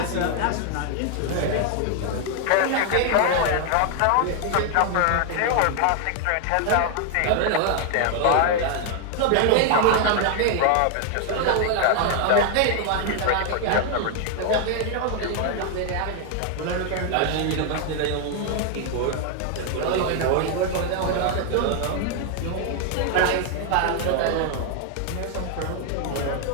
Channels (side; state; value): both; different; correlation 0.00